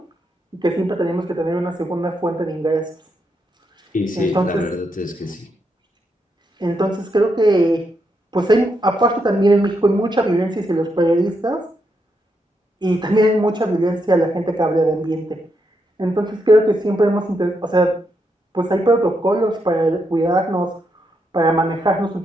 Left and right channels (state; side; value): normal; both; correlation 0.81